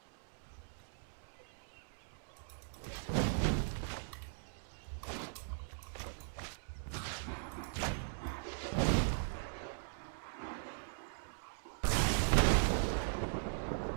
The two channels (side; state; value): left; silent; digital silence